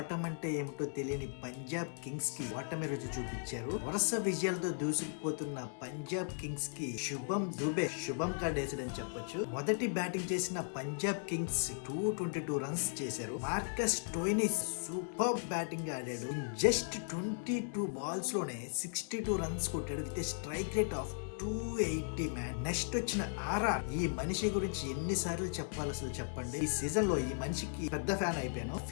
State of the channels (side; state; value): right; silent; digital silence